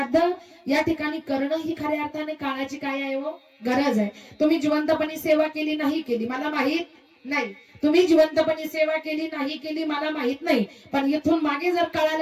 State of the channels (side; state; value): both; identical; correlation 1.00